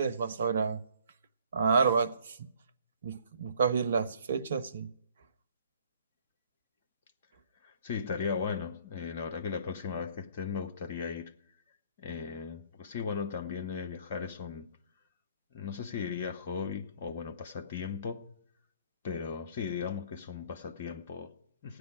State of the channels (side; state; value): both; inverted; correlation -0.58